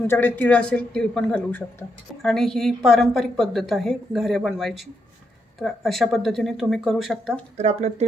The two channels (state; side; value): normal; both; correlation 0.80